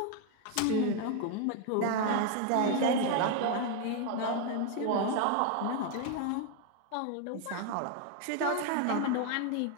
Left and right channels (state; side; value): different; both; correlation 0.01